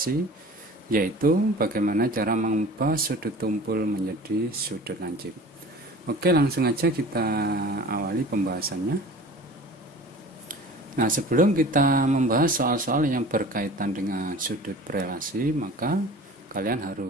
yaitu bagaimana cara mengubah sudut tumpul menjadi sudut lancip. Oke, langsung aja kita awali pembahasannya. Nah, sebelum kita membahas soal-soal yang berkaitan dengan sudut berelasi, maka kalian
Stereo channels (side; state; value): both; normal; correlation 0.41